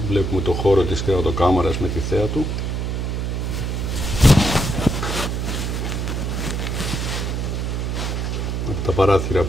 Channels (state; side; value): noise; right; hum, 1 dB below the sound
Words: Βλέπουμε το χώρο της κρεβατοκάμαρας με τη θέα του. Με τα παράθυρα